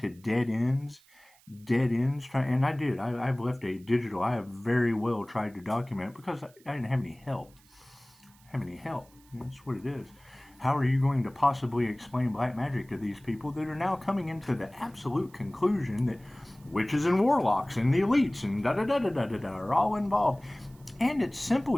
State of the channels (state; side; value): noise; right; hiss, 29 dB below the sound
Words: dead ends, and I've left a digital, I have very well tried to document, because I didn't have any help. That's what it is. How are you going to possibly explain black magic to these people that are now coming into the absolute conclusion that witches and warlocks and the elites and da-da-da-da-da-da are all involved? And it's simple